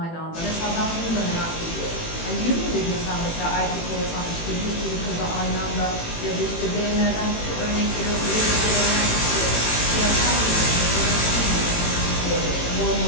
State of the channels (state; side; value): late; right; 18 ms